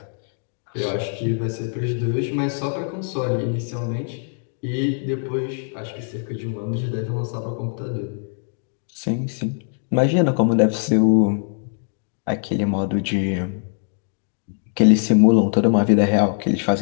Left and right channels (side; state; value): right; silent; 64 dB below the other